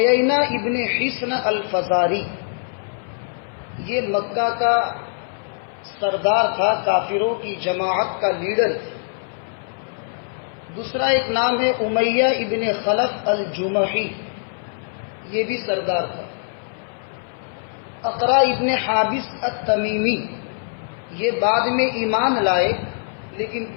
ابن حصن الفزاری یہ مکہ کا سردار تھا کافروں کی جماعت کا لیڈر تھا. دوسرا ایک نام ہے امیہ ابن خلف الجمحی یہ بھی سردار تھا. اقرا ابن حابس التمیمی یہ بعد میں ایمان لائے لیکن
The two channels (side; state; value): right; silent; 60 dB below the other